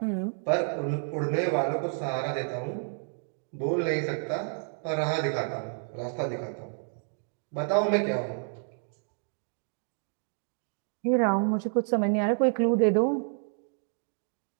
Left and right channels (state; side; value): silent; left; 57 dB below the other